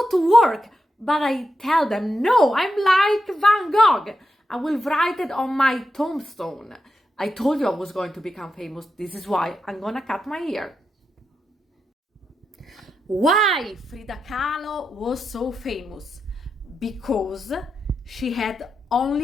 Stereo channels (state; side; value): normal; both; correlation 0.87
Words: to work. But I tell them, no, I'm like Van Gogh. I will write it on my tombstone. I told you I was going to become famous. This is why I'm gonna cut my hair. Why Frida Kahlo was so famous? Because she had